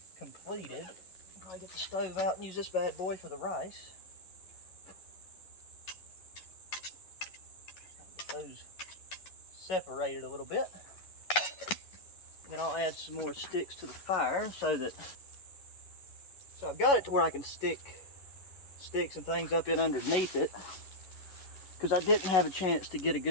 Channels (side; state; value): right; late; 11 ms